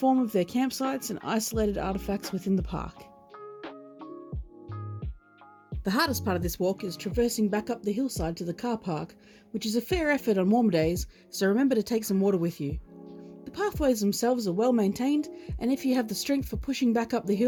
of their campsites and isolated artefacts within the park. The hardest part of this walk is traversing back up the hillside to the car park, which is a fair effort on warmer days, so remember to take some water with you. The pathways themselves are well maintained, and if you have the strength for pushing back up the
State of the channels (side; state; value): both; identical; correlation 1.00